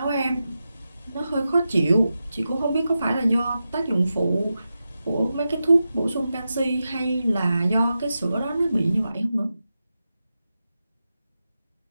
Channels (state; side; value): inverted; both; correlation -0.91